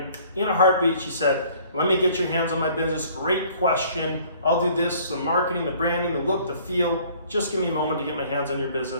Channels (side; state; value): both; inverted; correlation -0.56